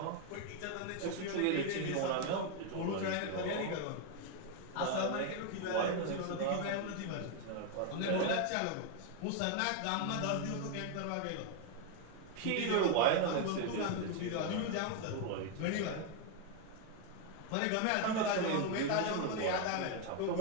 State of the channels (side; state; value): both; different; correlation 0.01